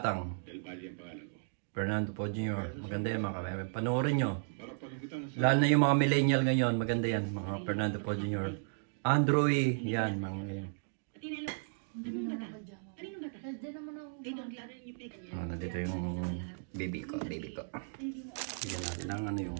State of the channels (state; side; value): silent; left; digital silence